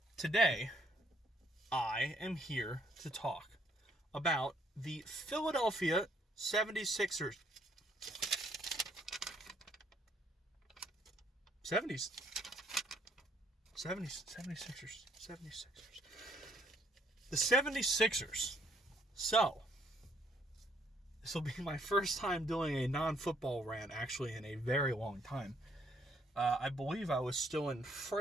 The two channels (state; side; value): normal; both; correlation 0.67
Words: today, I am here to talk about the Philadelphia 76ers. 76ers. The 76ers. So, this will be my first time doing a non-football rant, actually, in a very long time. I believe I was still in